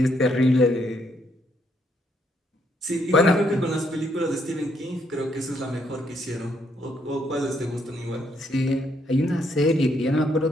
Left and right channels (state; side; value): normal; both; correlation 0.73